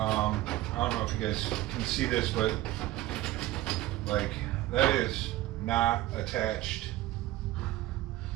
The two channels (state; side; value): quieter; left; 16.0 dB